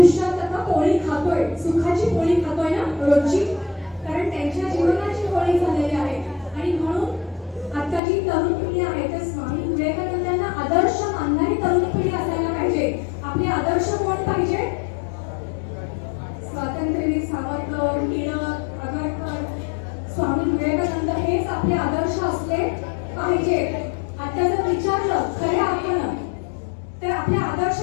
खातोय, सुखाची पोळी खातोय ना रोजची, कारण त्यांच्या जीवनाची पोळी झालेली आहे. आणि म्हणून आता जी तरुण पिढी आहे तर स्वामी विवेकानंदांना आदर्श मानणारी तरुण पिढी असायला पाहिजे. आपले आदर्श कोण पाहिजे? स्वातंत्र्यवीर सावरकर, टिळक, आगरकर, स्वामी विवेकानंद हेच आपले आदर्श असले पाहिजे. आता जर विचारलं खऱ्या अर्थानं तर आपले आदर्श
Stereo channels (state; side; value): drops out; right; at 8.0 s